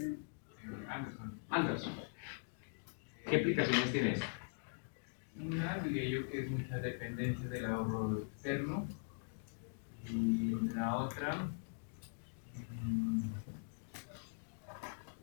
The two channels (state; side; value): silent; right; digital silence